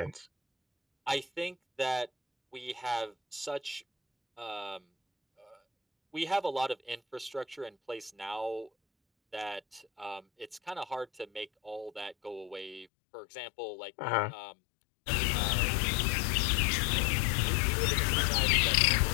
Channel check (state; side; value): drops out; right; at 12.9 s